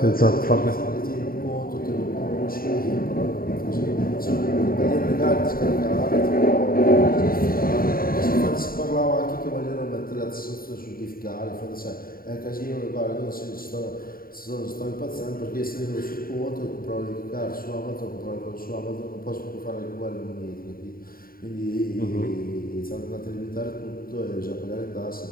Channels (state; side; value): late; right; 0.42 ms